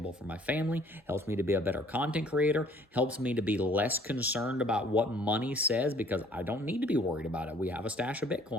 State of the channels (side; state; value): both; normal; correlation 0.57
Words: for my family, helps me to be a better content creator, helps me to be less concerned about what money says because I don't need to be worried about it. We have a stash of